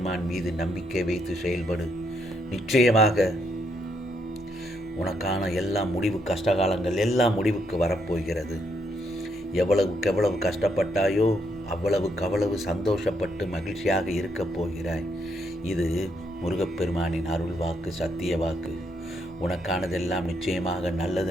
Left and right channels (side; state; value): both; normal; correlation 0.76